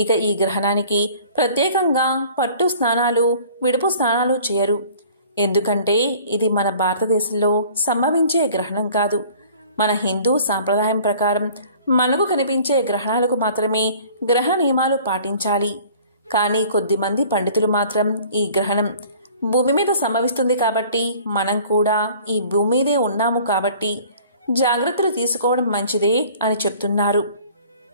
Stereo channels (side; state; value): both; inverted; correlation -0.50